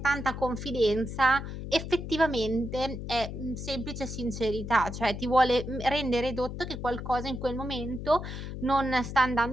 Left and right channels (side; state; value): left; noise; hum, 7 dB below the sound